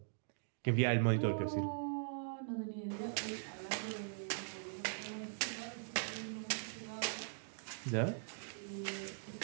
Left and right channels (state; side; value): silent; left; digital silence